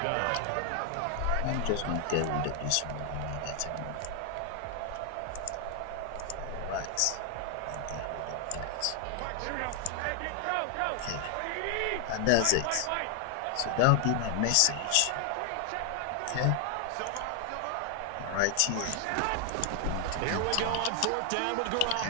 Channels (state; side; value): different; both; correlation 0.00